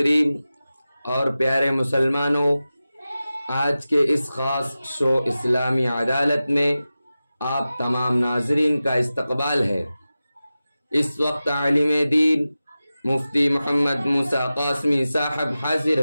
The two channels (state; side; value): inverted; both; correlation -0.95